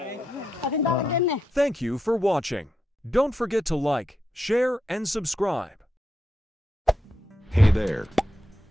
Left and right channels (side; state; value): both; normal; correlation 0.84